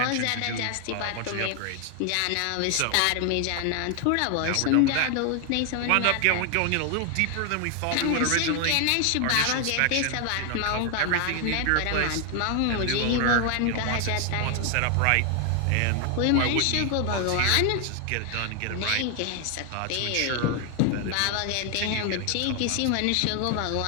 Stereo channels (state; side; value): different; both; correlation 0.00